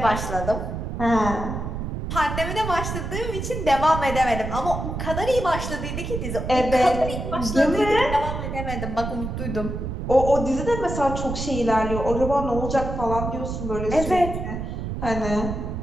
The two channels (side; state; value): right; noise; rumble, 5 dB below the sound